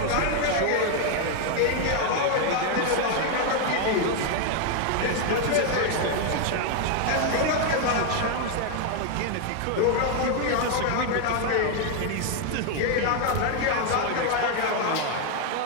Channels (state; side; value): different; both; correlation 0.00